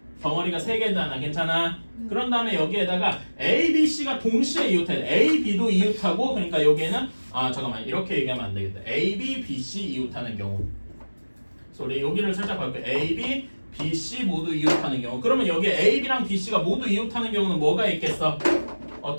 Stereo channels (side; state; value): both; inverted; correlation -1.00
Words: 덩어리가 3개잖아. 괜찮아? 그런 다음에 여기에다가 A, B, C가 동시에 이웃해. A, B도 이웃하고 그러니까 여기에는 잠깐만 이렇게 얘기하면 안 되겠다. A, B, B, C 이웃하는 경우. 그래서 우리 여기를 살짝 볼게요. A, B, B, C 모두 이웃하는 경우. 그러면 여기 A, B랑 B, C가 모두 이웃하는 경우는 뭐가 있겠어?